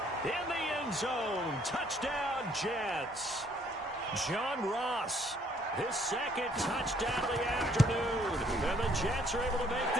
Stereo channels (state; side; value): normal; both; correlation 0.64